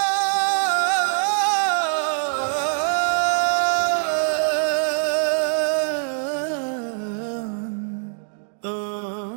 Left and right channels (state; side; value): silent; left; 60 dB below the other